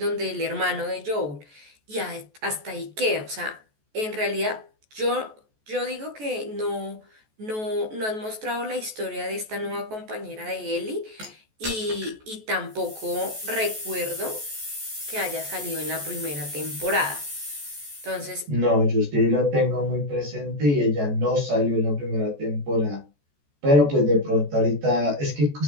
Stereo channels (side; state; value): left; late; 14 ms